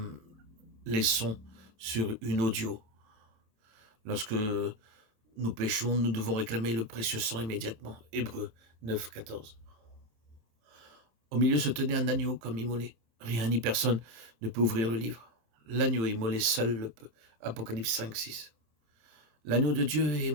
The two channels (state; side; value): late; left; 27 ms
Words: les sons sur une audio. Lorsque nous péchons, nous devons réclamer le précieux sang immédiatement. Hébreux 9, 14. Au milieu se tenait un agneau comme immolé. Rien ni personne ne peut ouvrir le livre. L'agneau immolé seul le peut. Apocalypse 5, 6. L'agneau de Dieu est